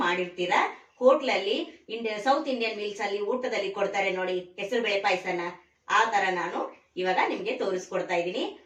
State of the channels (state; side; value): identical; both; correlation 1.00